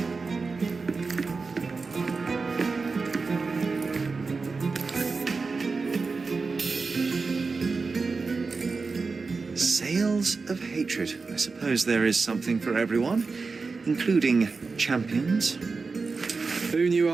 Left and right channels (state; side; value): quieter; left; 4.3 dB